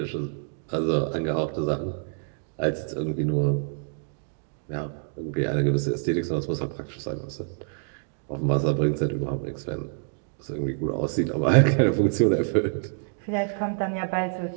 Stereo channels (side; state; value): left; silent; digital silence